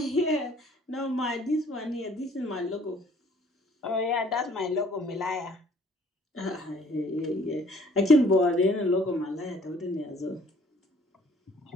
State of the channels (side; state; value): both; normal; correlation 0.58